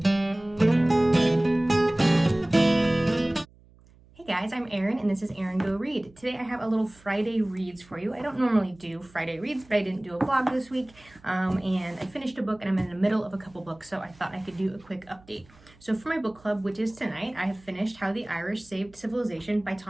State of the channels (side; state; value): right; noise; hum, 27 dB below the sound